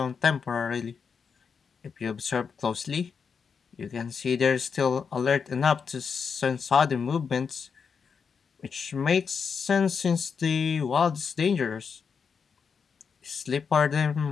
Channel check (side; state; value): right; quieter; 6.1 dB